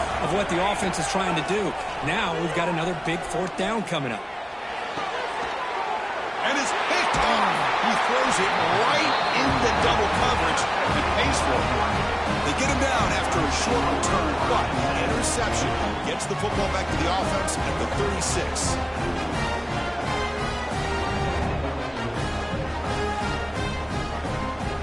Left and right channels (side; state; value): both; identical; correlation 1.00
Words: of what the offense is trying to do. Now we've got another big 4th down coming up. And it's picked off. He throws it right into double coverage and pays for it. They get him down after a short return, but the interception gets the football back to the offense at the 36.